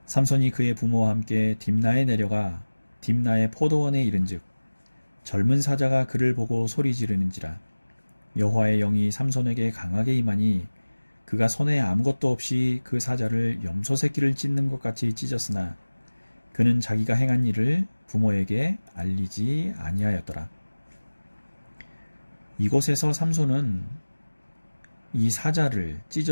삼손이 그의 부모와 함께 딥나에 내려가 딥나의 포도원에 이른즉 젊은 사자가 그를 보고 소리 지르는지라 여호와의 영이 삼손에게 강하게 임하니 그가 손에 아무것도 없이 그 사자를 염소 새끼를 찢는 것 같이 찢었으나 그는 자기가 행한 일을 부모에게 알리지 아니하였더라. 이곳에서 삼손은 이 사자를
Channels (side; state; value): both; inverted; correlation -1.00